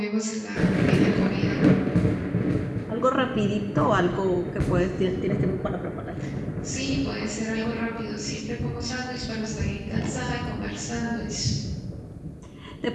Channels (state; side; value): identical; both; correlation 1.00